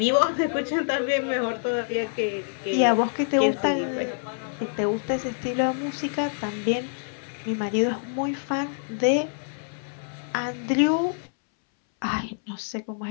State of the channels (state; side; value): silent; right; 61 dB below the other